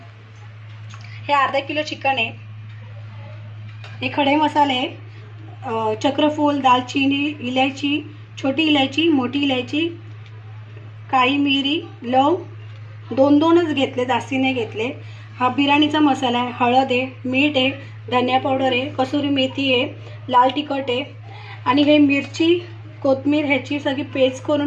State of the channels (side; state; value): both; identical; correlation 1.00